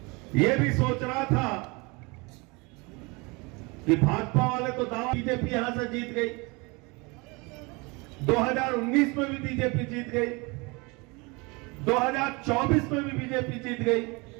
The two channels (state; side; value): quieter; left; 27.2 dB